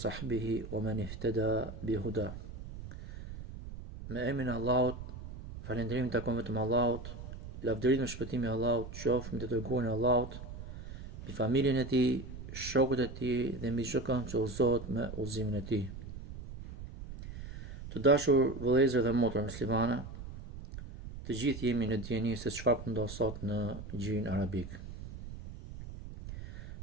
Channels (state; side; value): noise; right; rumble, 11 dB below the sound